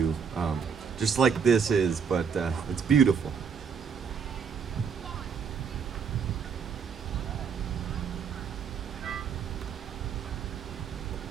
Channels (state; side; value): quieter; left; 6.6 dB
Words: just like this is, but it's beautiful.